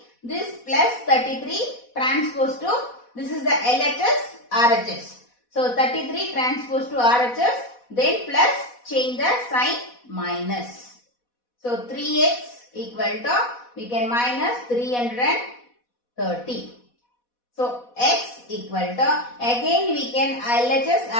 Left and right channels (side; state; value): right; late; 4.1 ms